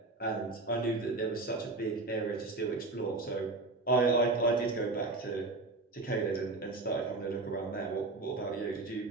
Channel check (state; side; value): quieter; left; 3.3 dB